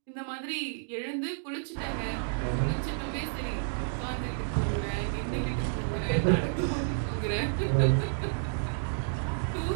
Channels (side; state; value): left; silent; digital silence